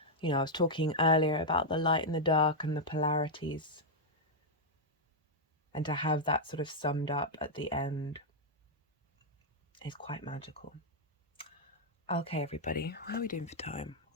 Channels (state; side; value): normal; both; correlation -0.03